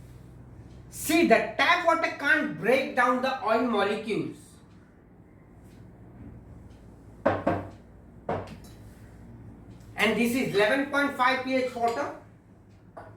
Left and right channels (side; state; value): both; identical; correlation 1.00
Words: See, the tap water can't break down the oil molecules. And this is 11.5 pH water.